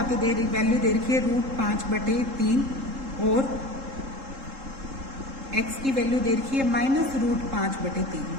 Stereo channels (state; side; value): late; left; 3.7 ms